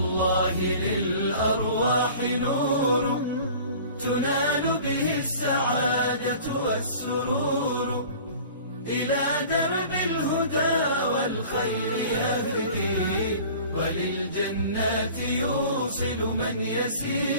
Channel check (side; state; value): both; inverted; correlation -0.44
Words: للأرواح نور، تنال به السعادة والسرور، إلى درب الهدى والخير يهدي، وللجنات يوصل من